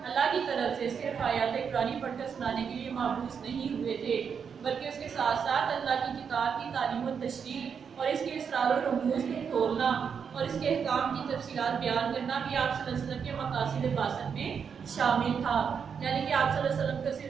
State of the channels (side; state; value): left; quieter; 6.7 dB